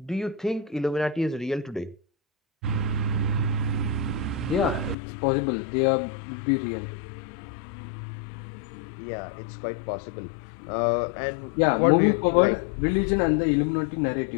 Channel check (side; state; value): right; drops out; at 5.0 s